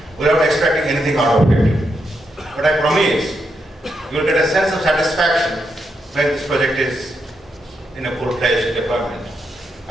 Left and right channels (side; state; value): both; normal; correlation 0.82